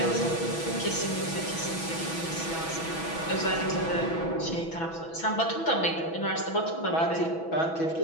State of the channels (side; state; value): right; late; 6.1 ms